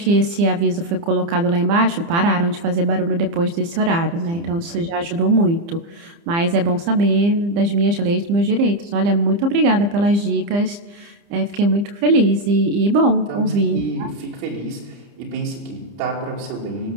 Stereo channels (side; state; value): left; late; 30 ms